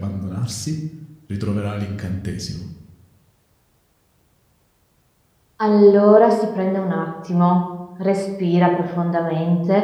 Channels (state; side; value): identical; both; correlation 1.00